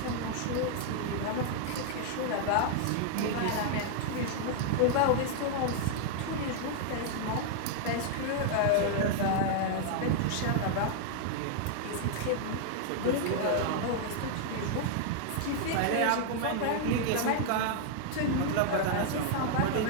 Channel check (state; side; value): different; both; correlation -0.01